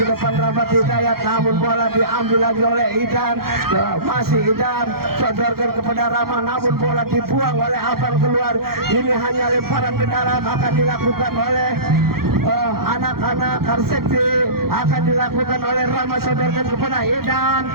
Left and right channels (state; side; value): late; left; 0.94 ms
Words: depan Rahmat Hidayat, namun bola diambil lagi oleh Idan, masih Idan sodorkan kepada Rama, namun bola dibuang oleh Abang keluar. Ini hanya lemparan ke dalam akan dilakukan oleh anak-anak Karseti, akan dilakukan oleh Rama, sodorkan kepada Idan,